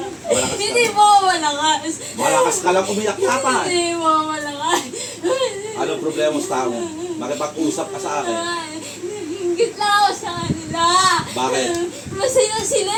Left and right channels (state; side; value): identical; both; correlation 1.00